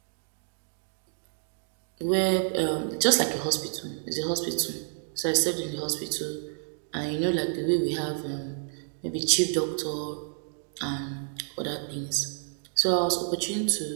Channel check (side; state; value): left; silent; digital silence